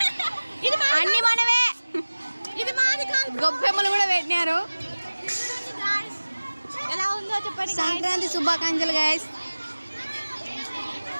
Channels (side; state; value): both; inverted; correlation -1.00